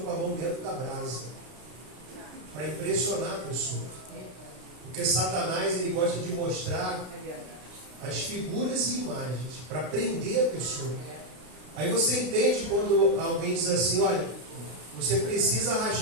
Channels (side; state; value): left; late; 32 ms